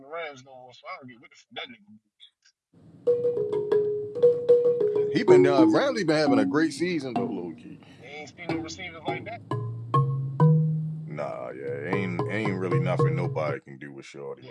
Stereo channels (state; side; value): identical; both; correlation 1.00